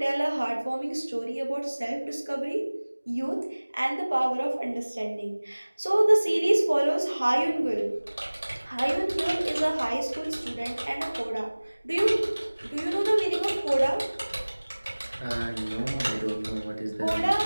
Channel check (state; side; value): inverted; both; correlation -1.00